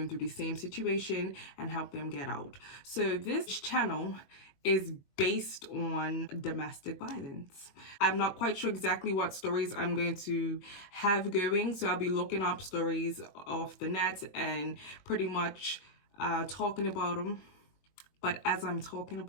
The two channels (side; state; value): right; late; 21 ms